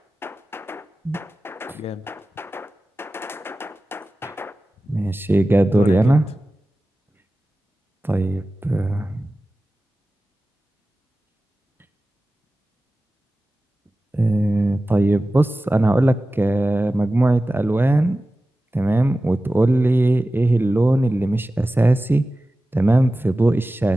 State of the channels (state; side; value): normal; both; correlation 0.95